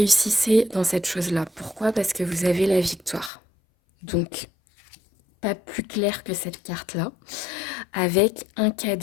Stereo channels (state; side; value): drops out; right; at 3.3 s